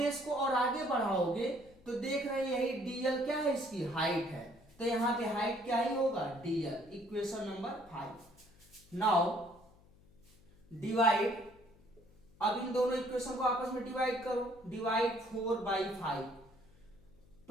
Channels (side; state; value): left; noise; hum, 27 dB below the sound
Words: को और आगे बढ़ाओगे तो देख रहे हैं यही DL क्या है, इसकी हाइट है, तो यहां पे हाइट क्या ही होगा, DL, equation number 5। Now divide, अब इन दोनों इक्वेशन को आपस में डिवाइड करो, डिवाइड 4/5,